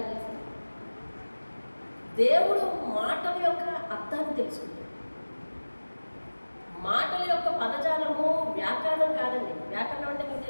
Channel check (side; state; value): both; inverted; correlation -1.00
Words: తెలుసు, దేవుడు మాటల యొక్క అర్థాన్ని తెలుసుకుంటాడు. మాటల యొక్క పదజాలము వ్యాకరణం కాదండి. వ్యాకరణం అంటే మీకు